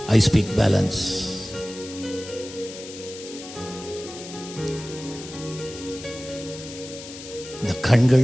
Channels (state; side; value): noise; left; hiss, 13 dB below the sound